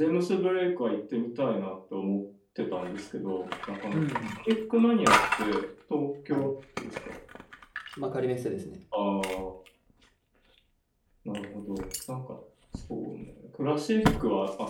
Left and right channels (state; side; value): identical; both; correlation 1.00